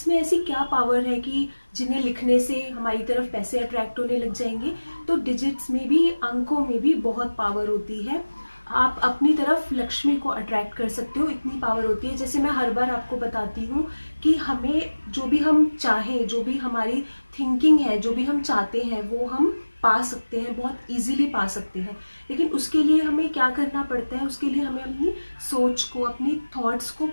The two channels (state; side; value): inverted; both; correlation -1.00